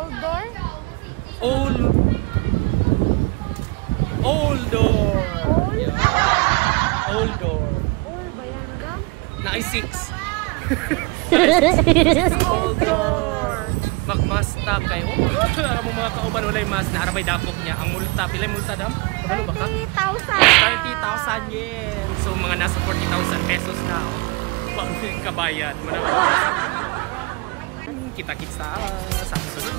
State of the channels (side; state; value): left; quieter; 26.3 dB